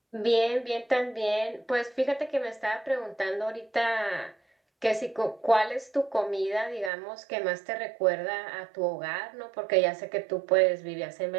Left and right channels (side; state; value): left; drops out; at 6.9 s